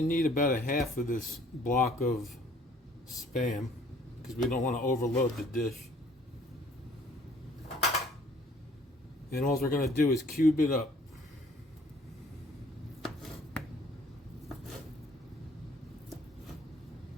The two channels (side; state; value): both; normal; correlation 0.57